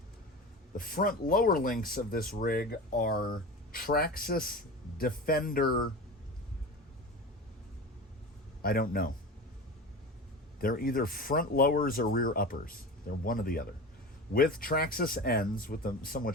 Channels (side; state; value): both; normal; correlation 0.30